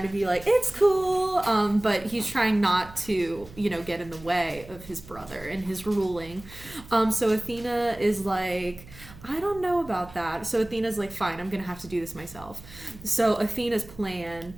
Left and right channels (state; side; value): noise; right; hum, 19 dB below the sound